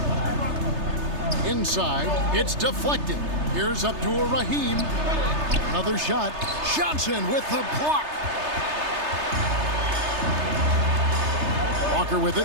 Inside, it's deflected. Here's Abdur-Rahim. Another shot. Johnson with the block. Walker with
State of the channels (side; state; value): left; late; 3.3 ms